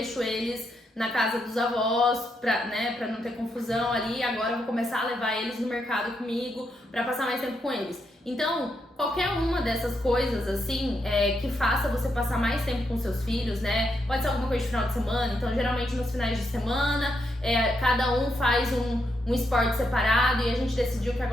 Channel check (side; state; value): both; normal; correlation 0.80